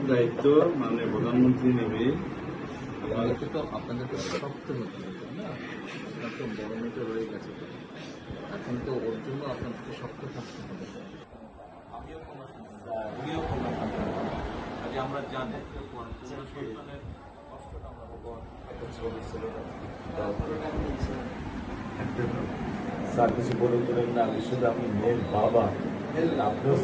দায়িত্ব মানে প্রধানমন্ত্রী নেবে। আপনাদেরকে শক্ত হতে হবে না, আপনার তো বড় মেয়েটা রয়ে গেছে, এখন তো ওর জন্য আপনাদেরকে শক্ত থাকতে হবে। আমিও কোনো উনিও কোনো আজ আমরা জানি সন্তানের কষ্টটা আমরা স্যার কিছু বলে দিলেন না, আমি শুধু আপনি মেয়ের বাবা, আপনিও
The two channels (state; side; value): identical; both; correlation 1.00